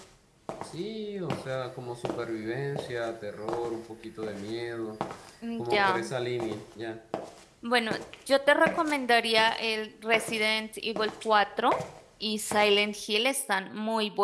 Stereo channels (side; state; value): both; identical; correlation 1.00